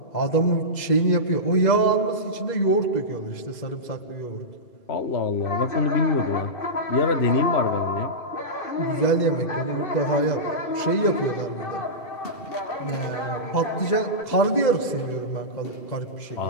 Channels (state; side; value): late; right; 2.0 ms